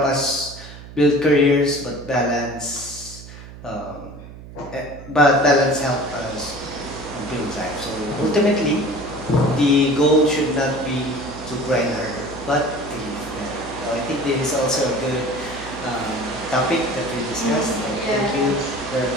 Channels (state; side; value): noise; right; hum, 15 dB below the sound